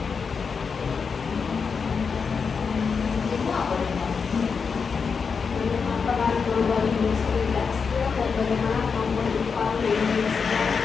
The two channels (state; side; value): quieter; right; 5.6 dB